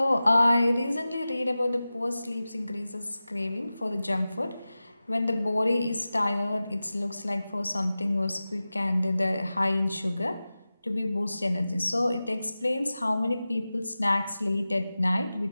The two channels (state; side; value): inverted; both; correlation -0.95